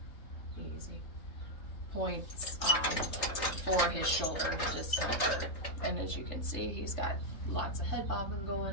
points for his shoulder discomfort. And as you can see, he's got lots of head bobbing going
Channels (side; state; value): right; late; 3.7 ms